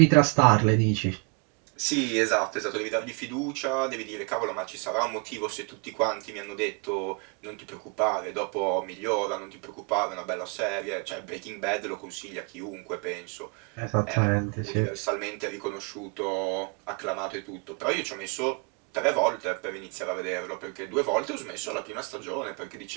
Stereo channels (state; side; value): quieter; left; 33.6 dB